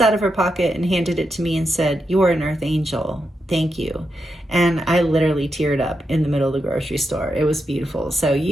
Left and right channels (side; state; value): both; normal; correlation 0.85